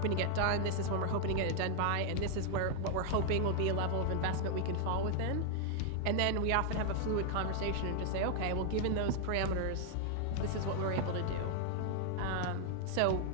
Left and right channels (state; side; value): different; both; correlation 0.00